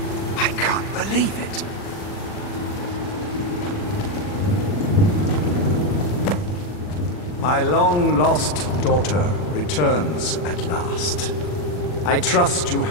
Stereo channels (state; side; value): late; right; 40 ms